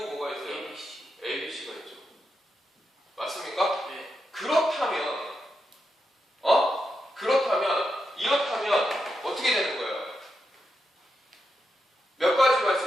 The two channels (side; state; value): both; normal; correlation 0.85